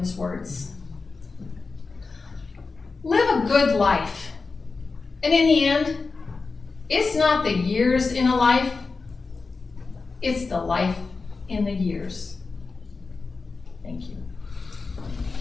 words. Live a good life, and in the end, it's not the years in a life, it's the life in the years. Thank you.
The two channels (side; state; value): right; quieter; 4.2 dB